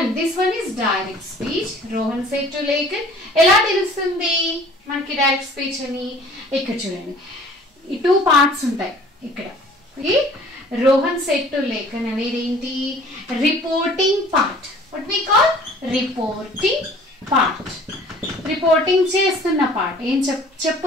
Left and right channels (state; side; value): normal; both; correlation 0.51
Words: this one is direct speech. Rohan said to Lekhan. ఎలా తెలుస్తుంది మనకి డైరెక్ట్ స్పీచ్ అని? ఇక్కడ చూడండి, ఈ టూ పార్ట్స్ ఉంటాయి ఇక్కడ. రోహన్ సెడ్ టు లేఖన్ అనేది ఏంటి? Reporting part. What we call reporting part. Reporting చేస్తున్న పార్ట్, ఏం